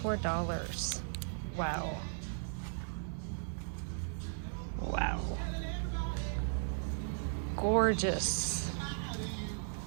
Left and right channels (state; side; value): silent; left; digital silence